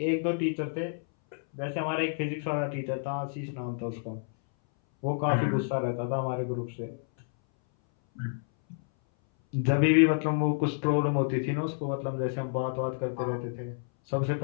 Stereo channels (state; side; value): silent; right; 58 dB below the other